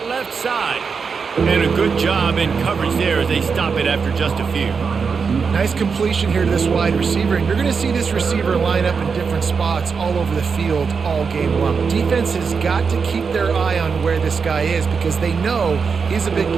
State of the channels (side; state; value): left; quieter; 5.5 dB